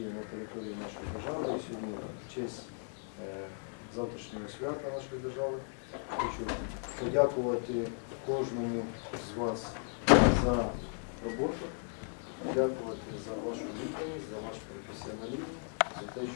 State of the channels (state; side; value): silent; right; 54 dB below the other